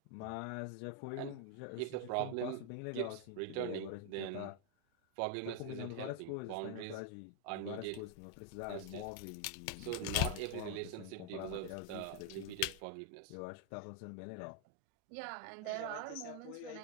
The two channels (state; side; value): different; both; correlation 0.00